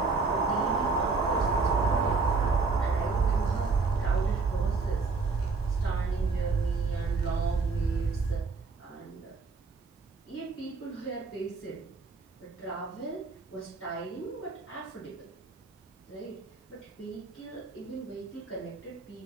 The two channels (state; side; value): quieter; left; 4.2 dB